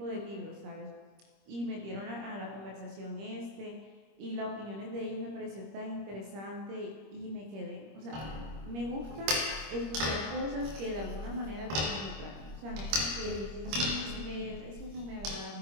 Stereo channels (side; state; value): left; late; 25 ms